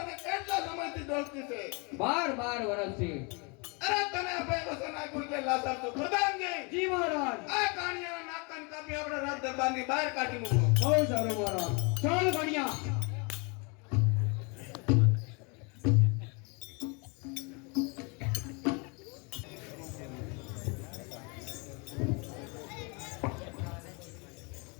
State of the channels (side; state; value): right; quieter; 31.9 dB